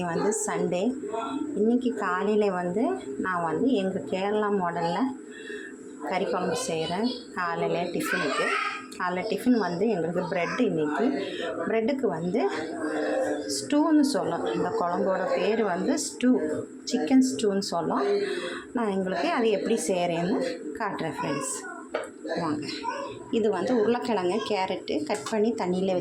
வந்து சண்டே. இன்றைக்கி காலையில் வந்து நான் வந்து எங்கள் கேரளா மாடலில் கறி குழம்பு செய்கிறேன். காலையில் டிஃபனுக்கு. காலைல டிஃபன் வந்து எங்களுக்கு ப்ரெட்டு. இன்றைக்கி ப்ரெட்டுக்கு வந்து ஸ்டூன்னு சொல்லும். இந்த குழம்போட பேர் வந்து ஸ்டூ, சிக்கன் ஸ்டூன்னு சொல்லும். நான் எங்களுக்கு அது எப்படி செய்கிறேன்னு காட்டுறேன் ஃப்ரெண்ட்ஸ், வாங்க. இது வந்து உருளைக்கிழங்கு, கேரட்டு கட் பண்ணி தண்ணியில்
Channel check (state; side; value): identical; both; correlation 1.00